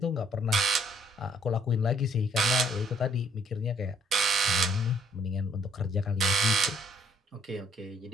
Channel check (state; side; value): normal; both; correlation 0.65